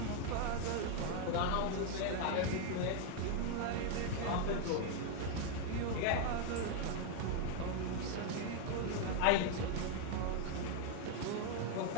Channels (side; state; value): both; different; correlation 0.00